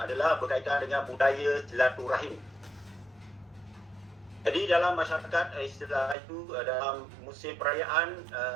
adalah berkaitan dengan budaya silaturahim. Jadi dalam masyarakat istilah itu dalam musim perayaan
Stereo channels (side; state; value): left; drops out; at 6.2 s